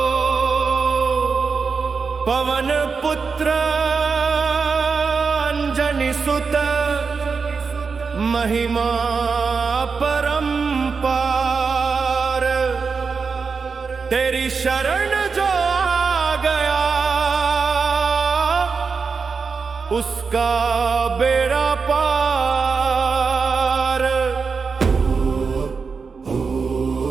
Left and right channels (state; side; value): quieter; left; 5.1 dB